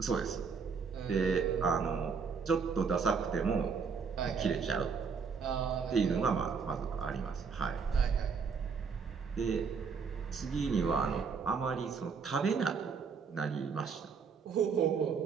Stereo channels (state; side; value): quieter; left; 5.6 dB